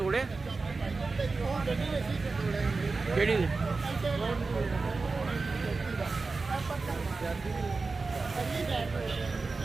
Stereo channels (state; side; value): quieter; left; 4.0 dB